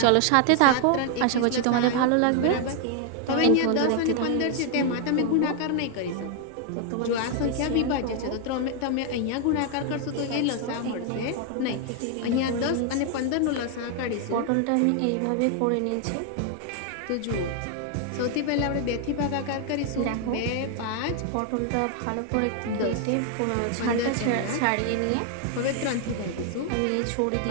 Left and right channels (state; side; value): different; both; correlation 0.00